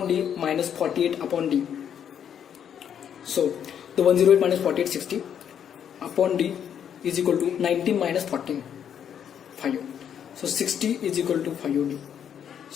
d minus 48 upon d. So the 108 minus 48 60 upon d is equal to 19 minus 14 5u. So 60 is equal to 5ud.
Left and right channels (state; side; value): quieter; right; 8.7 dB